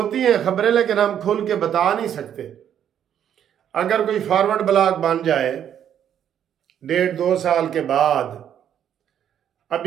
ہیں خبریں، لیکن ہم کھل کے بتا نہیں سکتے۔ اگر کوئی فارورڈ بلاگ بن جائے 1.5-2 سال کے بعد،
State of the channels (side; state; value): left; quieter; 9.5 dB